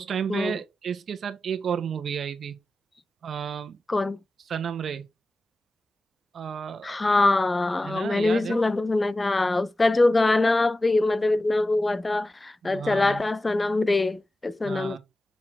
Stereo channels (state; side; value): normal; both; correlation 0.94